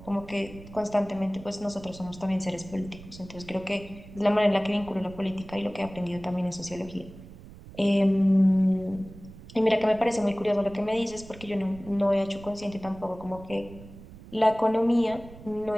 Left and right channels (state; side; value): noise; right; rumble, 17 dB below the sound